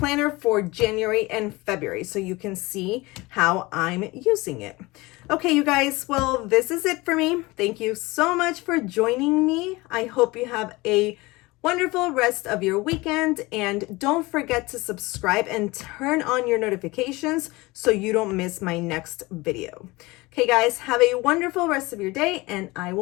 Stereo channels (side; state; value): right; quieter; 22.2 dB